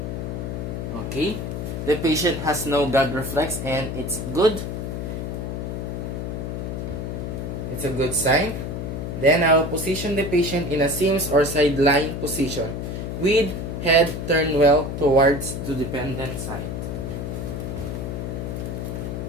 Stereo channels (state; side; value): noise; left; hum, 4 dB below the sound